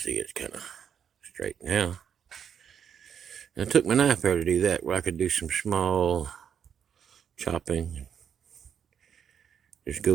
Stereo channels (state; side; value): quieter; left; 8.0 dB